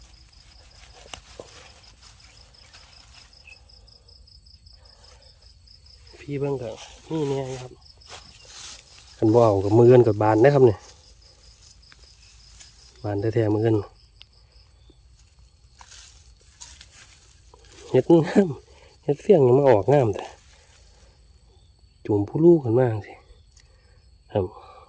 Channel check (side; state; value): both; identical; correlation 1.00